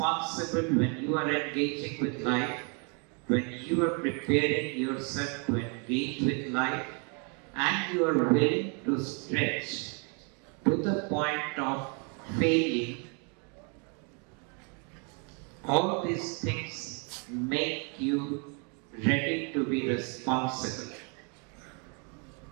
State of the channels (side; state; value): left; quieter; 36.1 dB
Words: when you are engaging with life, when you are preparing yourself to engage with life, and you are willing to stretch to the point of failing. All these things make you ready to be responsible.